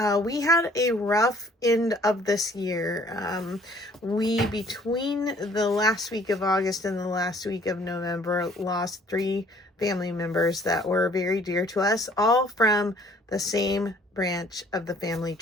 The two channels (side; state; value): both; normal; correlation 0.57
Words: We had a rough end of this year. Between the last week of August and the last week of November, lost 3 family members that were very dear to us, all from the same branch of the family